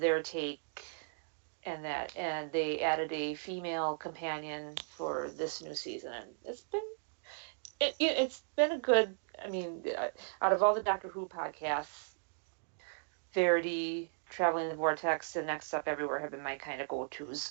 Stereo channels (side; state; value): left; silent; digital silence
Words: take and they added a female companion for this new season, and it's been a good. I mean, out of all the Doctor Who podcasts, Verity, Traveling the Vortex, and Next Up Everywhere have been my kind of go-tos,